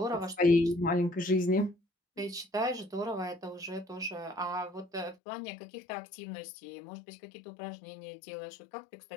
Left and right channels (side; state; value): right; drops out; at 5.2 s